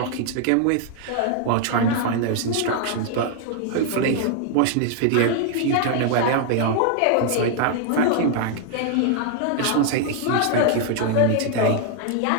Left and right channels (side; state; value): both; different; correlation 0.00